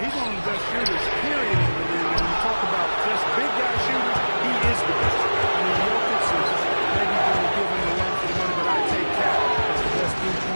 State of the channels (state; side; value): inverted; both; correlation -1.00